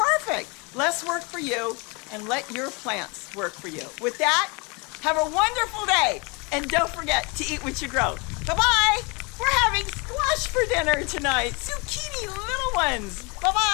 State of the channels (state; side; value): quieter; right; 29.9 dB